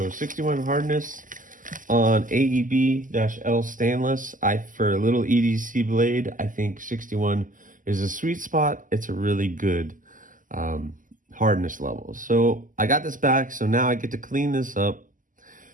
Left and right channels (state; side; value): late; left; 0.38 ms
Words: 61 hardness on AEB-L stainless. For a little EDC blade, I think 61 is a sweet spot. It's a really good hardness level. So I got this back, so now I get to clean this up